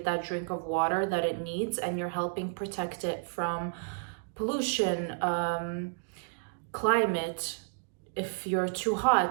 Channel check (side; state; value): left; silent; digital silence